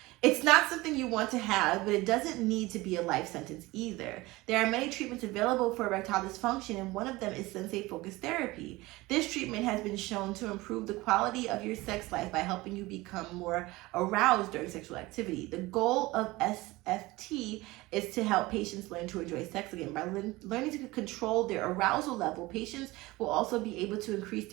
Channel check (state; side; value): quieter; left; 20.6 dB